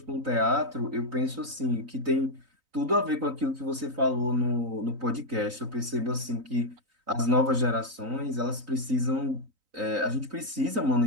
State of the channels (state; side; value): late; left; 3.9 ms